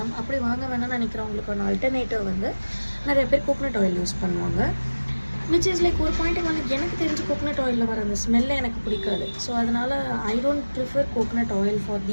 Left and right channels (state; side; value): inverted; both; correlation -1.00